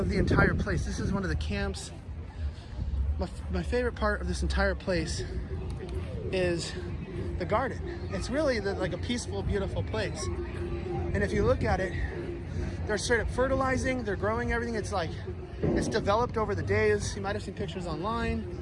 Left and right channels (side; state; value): both; identical; correlation 1.00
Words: the entire place. This is one of the camps. My favorite part of this entire place is the garden. It's really like a peaceful, beautiful place. And if you look at it, they're straight up fertilizing, they're growing everything. It's like, it's developed over the days. You might have seen pictures online.